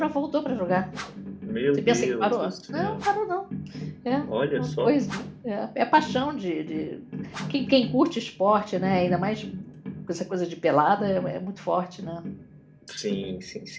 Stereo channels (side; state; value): both; identical; correlation 1.00